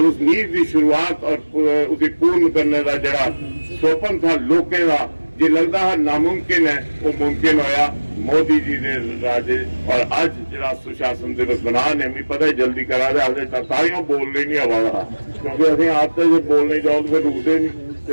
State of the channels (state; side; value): inverted; both; correlation -1.00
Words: उस नींव की शुरुआत और उसे पूर्ण करने का जरा स्वप्न था लोगों का जो लगता है नामुमकिन है, वो मुमकिन होया मोदी जी ने राजे। और आज जरा सुशासन दिवस बना ने भी पता है जल्दी करा दे, हजे तालियां बोलने नहीं आवा, क्योंकि अभी आप तो जो बोलने जाओ तो फिर रुकते नहीं, तो